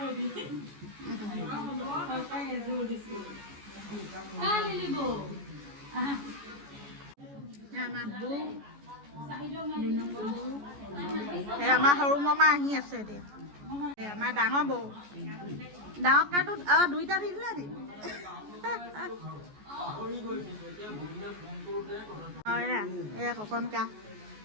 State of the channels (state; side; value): late; left; 14 ms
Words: আমাৰ সৰু মামা আহি আছে এতিয়া আমাৰ ডাঙৰ বৌ ডাঙৰ কাটো দুইটা দি দিলে নি এয়া ককন কা